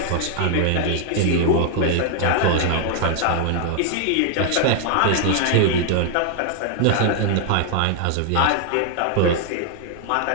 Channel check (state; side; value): different; both; correlation 0.00